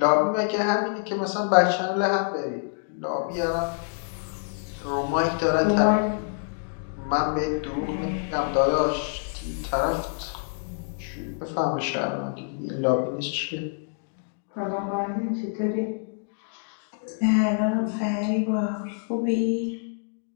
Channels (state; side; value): silent; right; digital silence